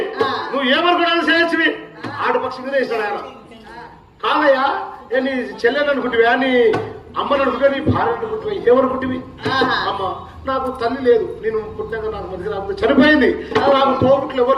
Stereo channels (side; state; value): both; identical; correlation 1.00